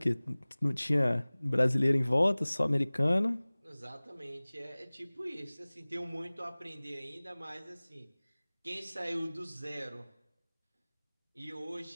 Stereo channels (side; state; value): both; inverted; correlation -1.00